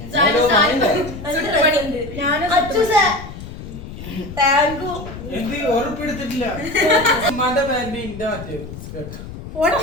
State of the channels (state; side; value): noise; left; rumble, 12 dB below the sound